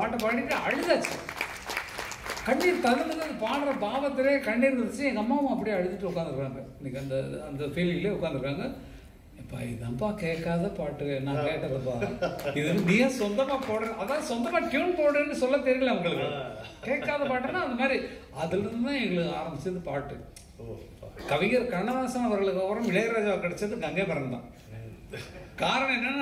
பாடிட்டு அழுதாச்சு. கண்ணீர் தகுந்தது பாடுற பாவத்திலே கண்ணீர் இருந்துச்சு. எங்கள் அம்மாவும் அப்படியே அழுதுட்டு உட்காந்துருக்காங்க. இன்னைக்கு அந்த ஃபீலிங்லேயே உட்காந்துருக்காங்க. இப்போ இதான்ப்பா கேட்காத பாட்டு, நான் கேட்டதுப்பா, இது நீயே சொந்தமாக போடுற, அதான் சொந்தமாக டியூன் போடுறேன்னு சொல்ல தெரியல உங்களுக்கு. கேட்காத பாட்டுன்னா அந்த மாதிரி அதுலேருந்து தான் எங்களுக்கு ஆரம்பிச்சது பாட்டு. கவிஞர் கண்ணதாசன் அவர்களுக்கு அப்புறம் இளையராஜா கிடைச்சது கங்கை மரன் தான். காரணம்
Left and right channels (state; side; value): identical; both; correlation 1.00